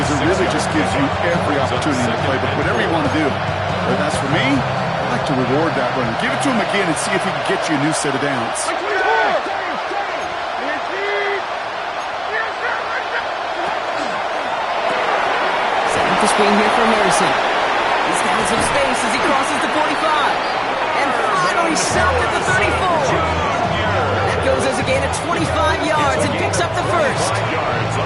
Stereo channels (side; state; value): both; identical; correlation 1.00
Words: it really just gives you every opportunity in the playbook, whatever you want to do. But as for me, I like to reward that run. Give it to him again and see if he can get you a new set of downs. Setting up the screen here for Harrison. He's got some space as he crosses the 45. And finally stopped at the 34. That goes as a gain of 25 yards and picks up the first. 5 yards